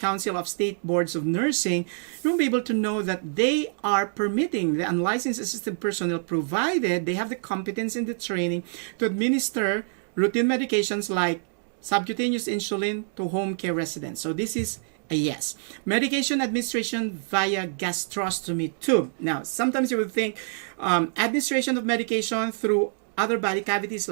of State Boards of Nursing, you'll be able to know that they are permitting the unlicensed assisted personnel, provided they have the competence and the training, to administer routine medications like subcutaneous insulin to home care residents. So this is a yes. Medication administration via gastrostomy tube. Now, sometimes you would think administration of medication through other body cavities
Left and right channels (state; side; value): silent; left; digital silence